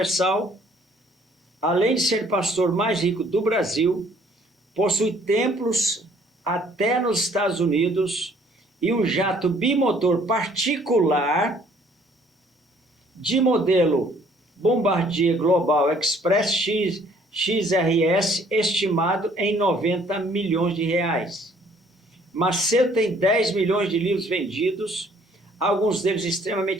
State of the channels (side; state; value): both; normal; correlation 0.60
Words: além de ser pastor mais rico do Brasil, possui templos até nos Estados Unidos e um jato bimotor particular de modelo Bombardier Global Express XRS, estimado em 90 milhões de reais. Macedo tem 10 milhões de livros vendidos, alguns deles